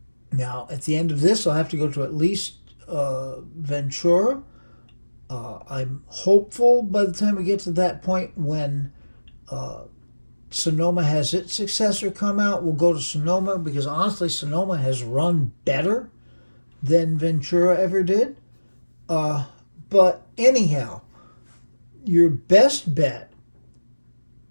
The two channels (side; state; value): both; inverted; correlation -1.00